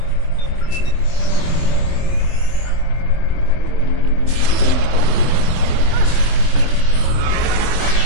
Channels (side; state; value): right; late; 24 ms